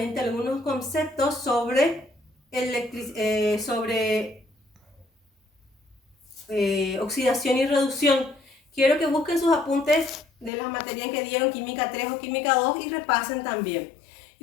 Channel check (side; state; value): right; drops out; at 10.5 s